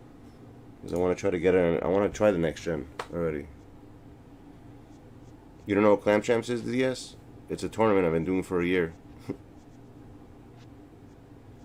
Because I want to try to get it. I want to try the next gen already. You don't know what Clam Champs is, DS? It's a tournament I've been doing for a year.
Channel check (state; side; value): identical; both; correlation 1.00